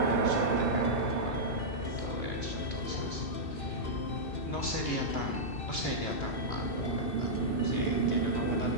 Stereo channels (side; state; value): right; late; 2.7 ms